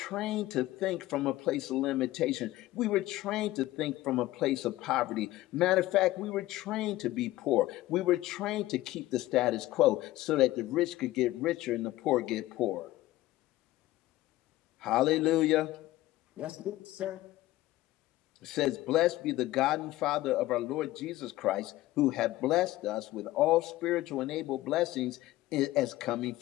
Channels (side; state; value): right; quieter; 16.8 dB